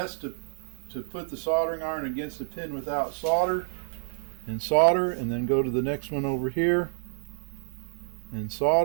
to put the soldering iron against a pin without solder, and then go to the next one over here and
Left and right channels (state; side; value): silent; left; digital silence